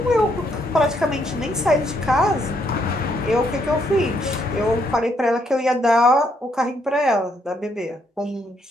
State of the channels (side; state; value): both; normal; correlation 0.73